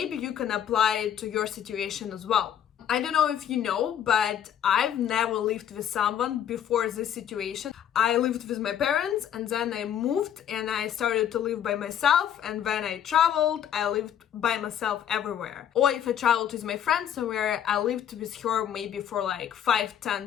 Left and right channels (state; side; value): quieter; right; 9.7 dB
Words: you can apply it to your situation as well. I don't know if you know, but I've never lived with someone before this situation. I lived with my parents and then I moved and I started to live by myself, and when I traveled, I lived by myself everywhere. Or if I traveled with my friend somewhere, I lived with her maybe for like